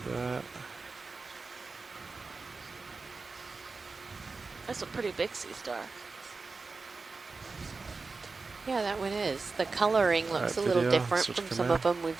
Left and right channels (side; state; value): left; quieter; 4.1 dB